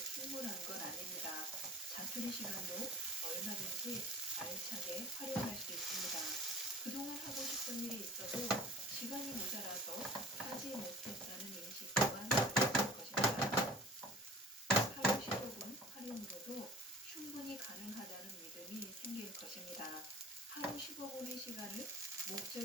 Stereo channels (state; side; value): normal; both; correlation 0.43